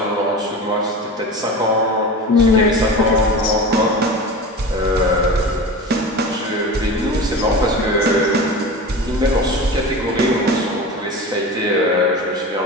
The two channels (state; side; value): normal; both; correlation 0.31